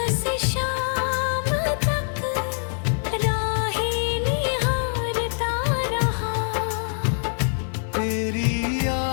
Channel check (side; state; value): right; silent; 62 dB below the other